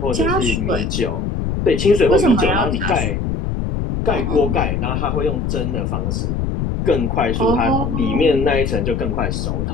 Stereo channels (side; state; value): left; noise; rumble, 1 dB below the sound